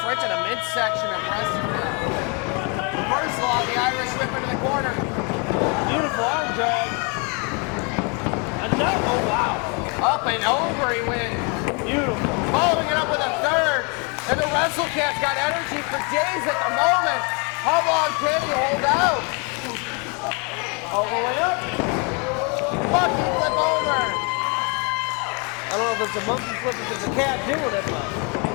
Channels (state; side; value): quieter; right; 33.6 dB